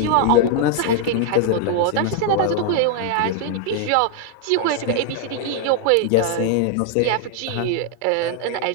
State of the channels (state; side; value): different; both; correlation 0.00